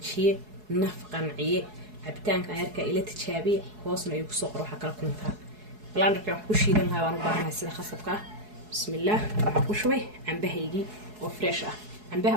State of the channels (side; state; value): left; late; 4.7 ms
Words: naf qanciye cabitaanka yarka ila tijaabiye hoosna ay ku soo qoro waxa kala kuntaa blanderka wax ku shiidan lahaa waan u baahanahay sida khasabka bismillaah waxa ku shubay cambahaygii وفريش عنبها